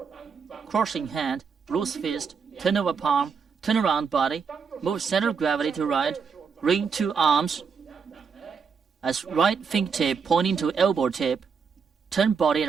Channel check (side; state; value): left; quieter; 5.9 dB